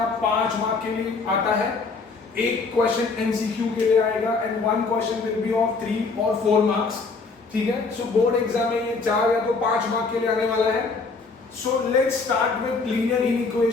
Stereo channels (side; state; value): right; quieter; 4.2 dB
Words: 5 मार्क के लिए आता है। एक क्वेश्चन एमसीक्यू के लिए आएगा and one question will be of 3 और 4 मार्क्स। ठीक है, सो बोर्ड एग्जाम में ये 4 या तो 5 मार्क के लिए आने वाला है। So let's start with linear